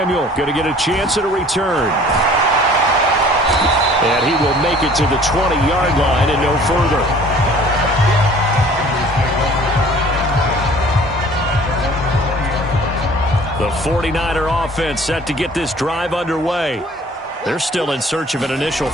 going to get a chance at a return. And he will make it to the 20-yard line and no further. The 49er offense set to get this drive underway. They're still in search of an initial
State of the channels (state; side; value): normal; both; correlation 0.51